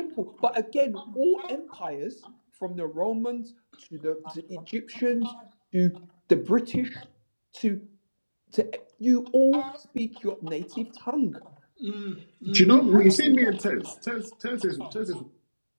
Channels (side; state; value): both; inverted; correlation -1.00